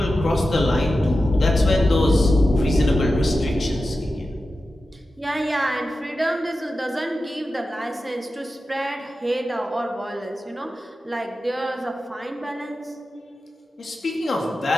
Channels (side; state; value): both; normal; correlation 0.92